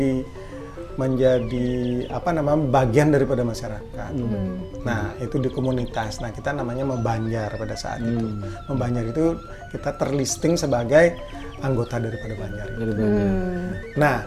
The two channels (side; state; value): both; identical; correlation 1.00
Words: bagian daripada masyarakat. Nah, itu di komunitas. Nah, kita namanya membanjar pada saat itu. Membanjar itu kita terlisting sebagai anggota daripada banjar. Nah,